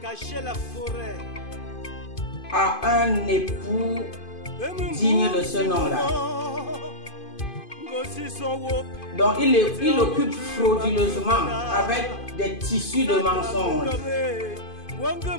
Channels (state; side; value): late; right; 2.5 ms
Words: à un époux digne de ce nom-là. Donc il occupe frauduleusement avec des tissus de mensonges